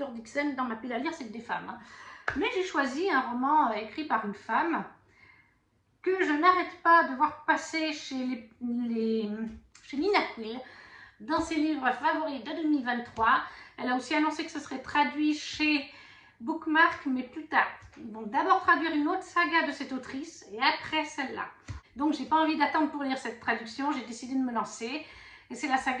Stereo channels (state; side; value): identical; both; correlation 1.00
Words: Dixon, dans ma pile à lire, c'est que des femmes. Hein. Mais j'ai choisi un roman écrit par une femme que je n'arrête pas de voir passer chez Nina Quill dans ses livres favoris de 2023. Elle a aussi annoncé que ce serait traduit chez Bookmark, mais plus tard. Ils vont d'abord traduire une autre saga de cette autrice et après celle-là. Donc j'ai pas envie d'attendre pour lire cette traduction, j'ai décidé de me lancer. Et c'est la